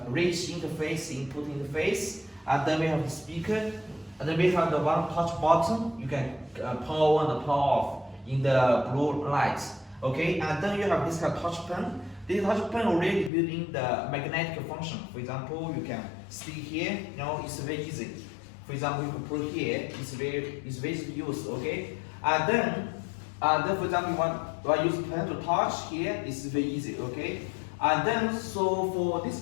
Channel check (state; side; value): drops out; right; at 13.3 s